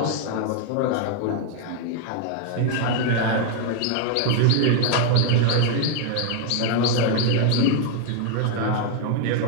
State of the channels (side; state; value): both; different; correlation 0.00